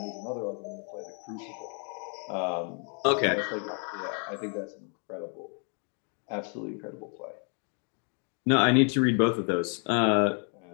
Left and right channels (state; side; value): quieter; right; 39.8 dB